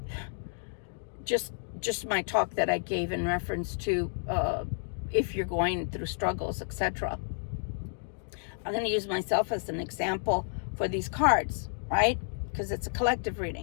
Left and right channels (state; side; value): silent; right; digital silence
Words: just my talk that I gave in reference to if you're going through struggles, etc. I'm going to use myself as an example for these cards, right? Because it's a collective